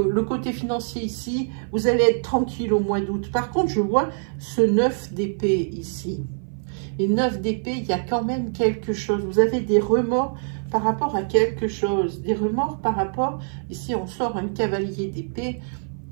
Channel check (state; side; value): silent; left; 56 dB below the other